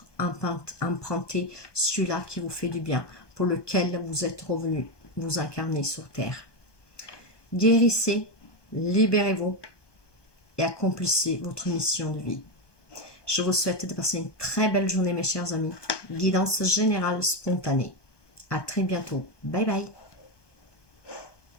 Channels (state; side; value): late; right; 1.2 ms